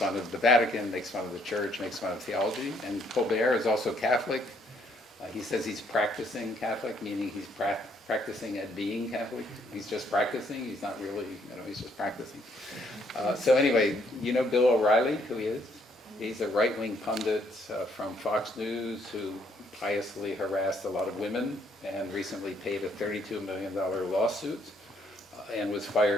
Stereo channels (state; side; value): normal; both; correlation 0.68